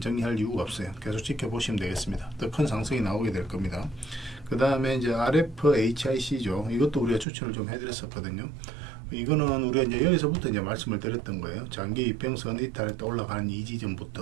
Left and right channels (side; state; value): left; drops out; at 7.2 s